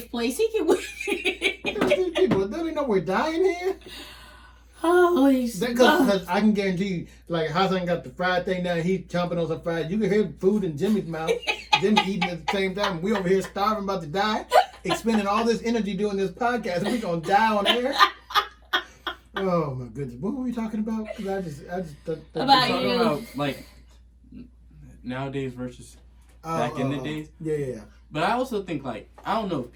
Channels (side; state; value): both; identical; correlation 1.00